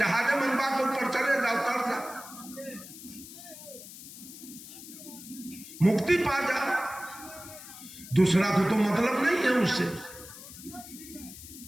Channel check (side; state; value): left; noise; hiss, 15 dB below the sound